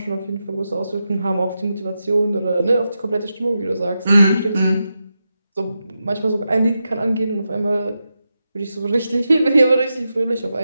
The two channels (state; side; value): inverted; both; correlation -0.88